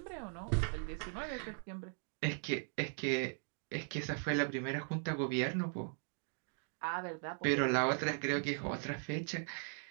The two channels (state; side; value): silent; left; 52 dB below the other